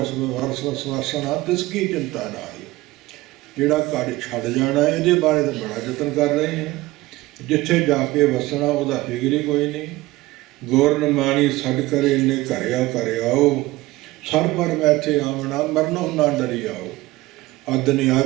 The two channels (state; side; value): quieter; left; 18.8 dB